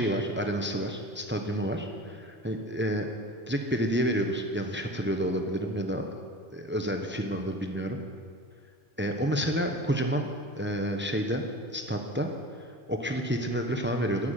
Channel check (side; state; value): both; normal; correlation 0.36